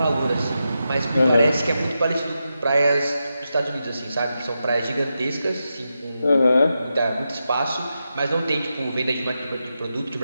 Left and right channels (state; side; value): inverted; both; correlation -0.88